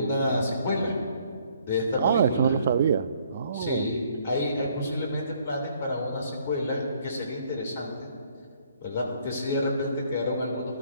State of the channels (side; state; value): both; inverted; correlation -0.64